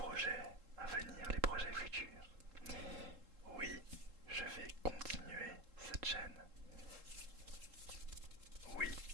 à venir, les projets futurs. Oui, je vais continuer cette chaîne. Oui,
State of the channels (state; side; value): late; left; 3.7 ms